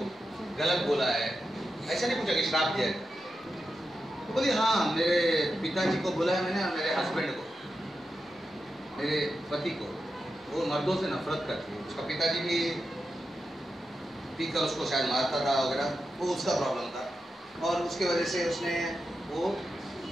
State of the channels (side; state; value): both; normal; correlation 0.89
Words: गलत बोला है? ऐसा नहीं पूछा कि श्राप दिया है। तो बोली हाँ, मेरे पिताजी को बोला है मैंने, मेरे हस्बैंड को, मेरे पति को। वो मर्दों से नफरत करती है, उसका पिताजी भी पीकर उसको शायद मारता था वगैरह, वो उसका प्रॉब्लम था और उसके वजह से उसने वो